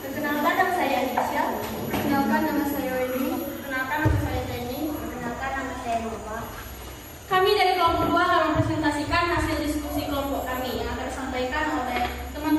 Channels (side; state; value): both; identical; correlation 1.00